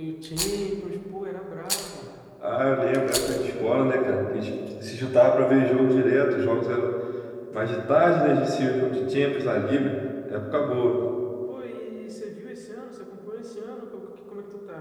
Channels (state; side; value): identical; both; correlation 1.00